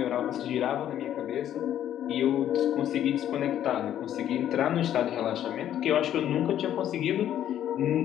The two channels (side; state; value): right; quieter; 11.1 dB